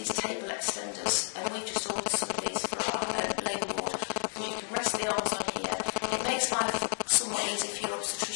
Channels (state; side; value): silent; right; 57 dB below the other